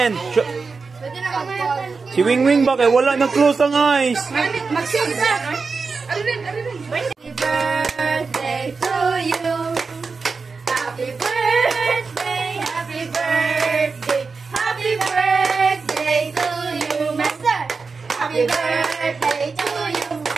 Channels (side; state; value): left; quieter; 4.6 dB